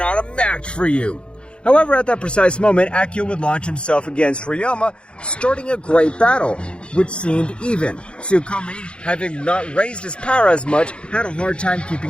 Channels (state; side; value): late; right; 0.056 ms